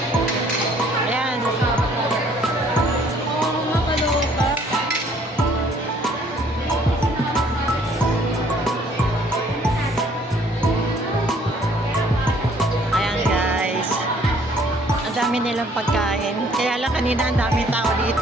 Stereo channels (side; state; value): both; normal; correlation 0.60